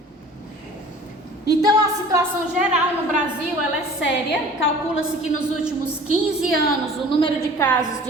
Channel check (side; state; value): both; normal; correlation 0.46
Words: Então a situação geral no Brasil ela é séria. Calcula-se que nos últimos 15 anos o número de casos